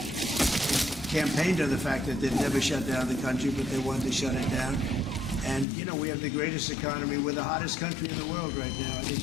Campaigned on the fact that they'd never shut down the country, but they wanted to shut it down. And, you know, we have the greatest economy. We're the hottest country in the world right now. I think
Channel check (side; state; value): right; drops out; at 5.7 s